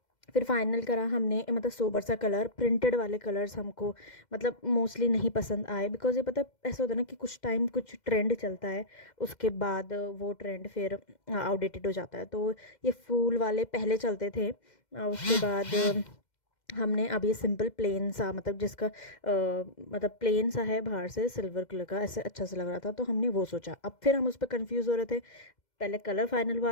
फिर फाइनल करा हमने, मतलब सोबर सा कलर, प्रिंटेड वाले कलर्स हमको मतलब मोस्टली नहीं पसंद आए, बिकॉज ये पता है ऐसा होता है ना कि कुछ टाइम कुछ ट्रेंड चलता है, उसके बाद वो ट्रेंड फिर आउटडेटेड हो जाता है। तो ये फूल वाले पहले चलते थे, उसके बाद हमने अब ये सिंपल प्लेन सा, मतलब जिसका मतलब प्लेन सा है बाहर से सिल्वर कलर का, ऐसे अच्छा सा लग रहा था, तो हमने वो सोचा। अब फिर हम उस पर कंफ्यूज हो रहे थे। पहले कलर फाइनल हुआ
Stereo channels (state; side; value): late; right; 2.1 ms